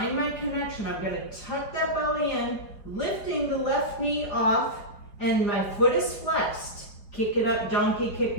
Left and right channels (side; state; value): right; late; 4.8 ms